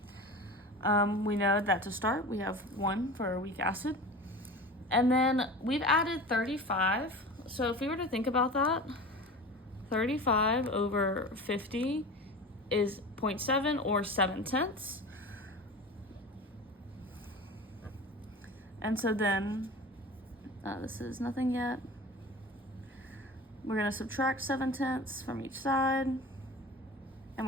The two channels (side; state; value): both; normal; correlation 0.34